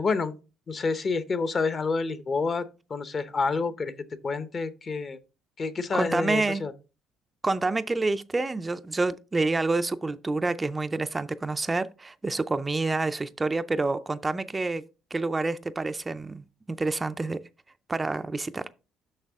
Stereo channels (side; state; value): both; normal; correlation 0.90